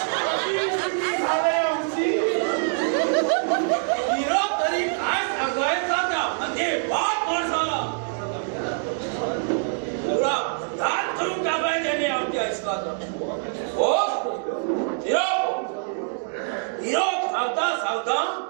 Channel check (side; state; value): left; silent; 62 dB below the other